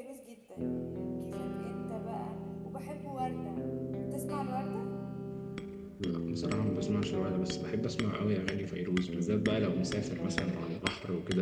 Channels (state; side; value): identical; both; correlation 1.00